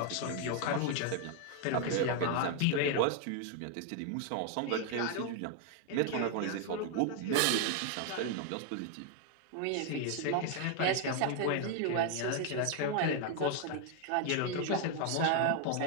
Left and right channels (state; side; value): different; both; correlation 0.00